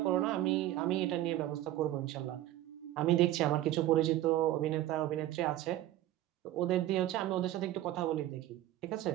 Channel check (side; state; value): left; quieter; 14.3 dB